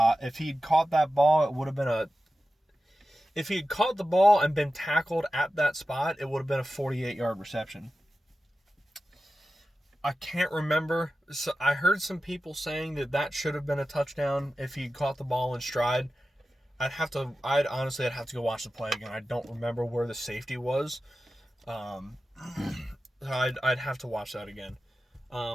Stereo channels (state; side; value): normal; both; correlation 0.93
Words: If he'd caught that ball, it would have been if he had caught the ball and been tackled at that spot, it would have been a 48-yard reception. I can't remember. So I heard some people saying that should have been a touchdown if he caught the ball in stride. I'd have to go watch the play again. I don't remember where the safety was. I'd have to watch that again.